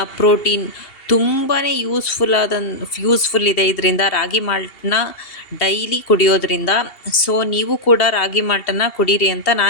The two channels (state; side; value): late; right; 2.7 ms